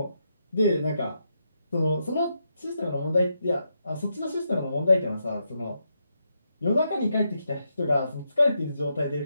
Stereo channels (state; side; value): inverted; both; correlation -0.82